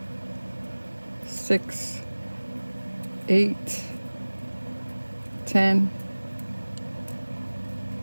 6, 8, 10,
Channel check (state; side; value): inverted; both; correlation -1.00